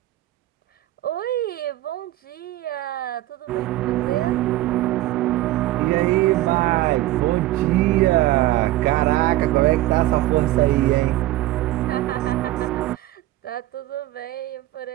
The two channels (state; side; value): quieter; left; 16.1 dB